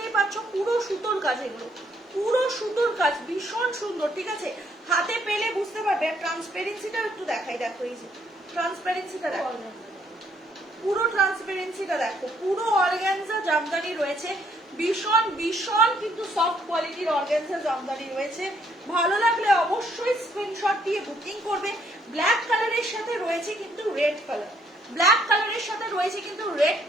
পাচ্ছ পুরো সুতোর কাজ, এগুলো পুরো সুতোর কাজ, ভীষণ সুন্দর, ঠিক আছে? হাতে পেলে বুঝতে পারবে। ট্রান্সপারেন্সিটা একটু দেখাই, দেখো এই যে ট্রান্সপারেন্সিটা দেখো, পুরো ট্রান্সপারেন্সিটা দেখো। পুরো অর্গানজা জামদানি রয়েছে, ভীষণ ভীষণ কিন্তু সফট কোয়ালিটির অর্গানজা জামদানি রয়েছে। ভালো লাগলে অবশ্যই স্ক্রিনশট দিয়ে বুকিং করবে। ব্ল্যাক কালারের সাথে রয়েছে কিন্তু রেড কালার, ব্ল্যাক কালারের সাথে রয়েছে কিন্তু রেড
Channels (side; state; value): both; normal; correlation 0.69